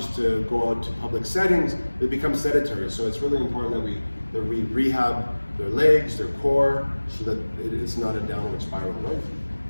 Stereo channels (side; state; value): both; inverted; correlation -1.00